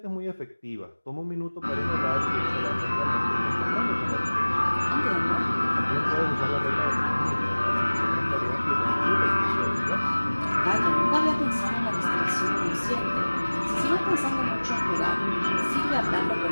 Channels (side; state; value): both; inverted; correlation -1.00